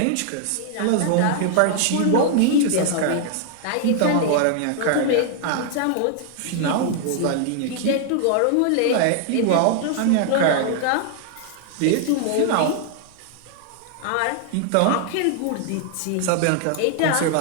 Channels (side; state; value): both; different; correlation 0.00